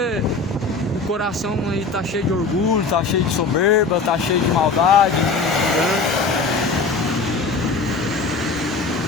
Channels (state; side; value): quieter; right; 4.2 dB